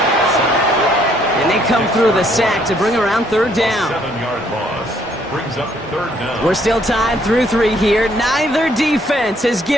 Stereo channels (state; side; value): normal; both; correlation 0.66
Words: And they come through the sack to bring around third down. 7-yard loss brings up third down. We're still tied through 3 here. Neither defense has